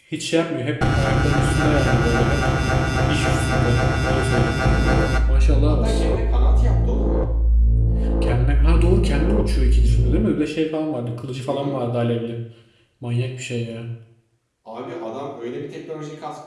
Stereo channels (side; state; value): both; identical; correlation 1.00